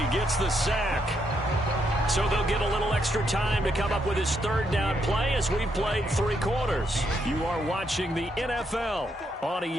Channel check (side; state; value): both; normal; correlation 0.77